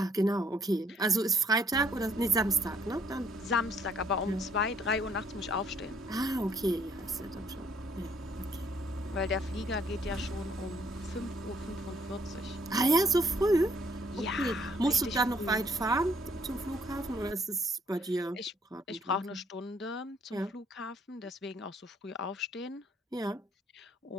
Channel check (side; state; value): both; normal; correlation 0.63